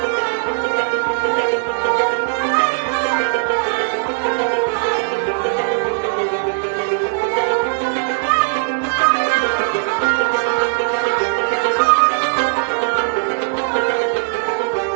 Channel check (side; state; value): left; silent; digital silence